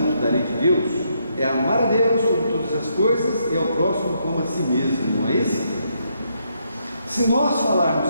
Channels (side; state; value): both; inverted; correlation -0.76